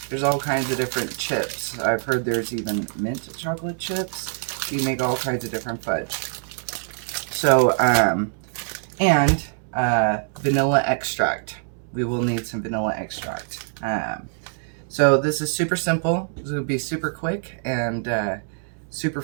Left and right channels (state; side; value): silent; left; digital silence